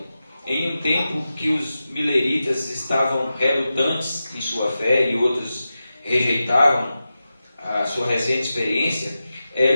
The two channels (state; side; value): inverted; both; correlation -0.92